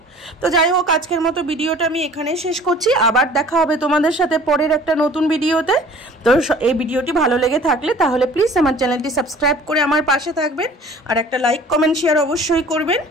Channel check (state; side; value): normal; both; correlation 0.48